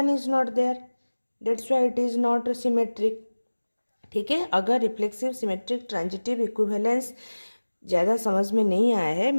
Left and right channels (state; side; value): inverted; both; correlation -1.00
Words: is not there. That's why it is not symmetric. ठीक है. अगर रिफ्लेक्सिव, सिमेट्रिक, ट्रांजिटिव, इक्विवेलेंस ज़्यादा समझ में नहीं आया है,